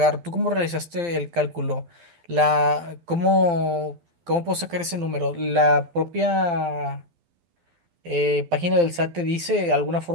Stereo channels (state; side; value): late; left; 12 ms